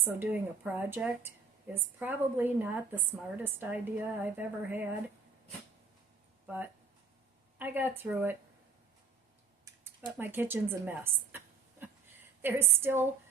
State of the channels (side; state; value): left; quieter; 4.9 dB